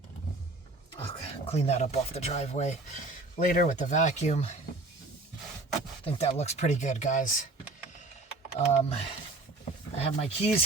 I'll clean that up off the driveway later with the vacuum. I think that looks pretty good, guys. I have my keys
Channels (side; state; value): left; quieter; 3.2 dB